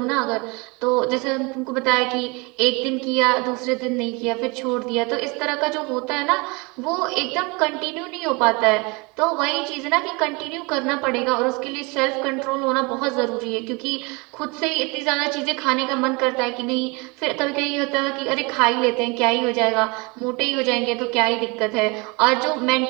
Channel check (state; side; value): quieter; left; 27.8 dB